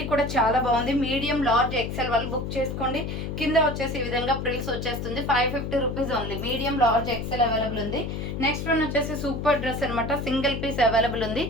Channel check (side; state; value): left; noise; hum, 4 dB below the sound